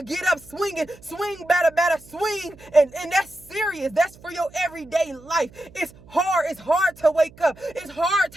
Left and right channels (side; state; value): right; noise; hum, 23 dB below the sound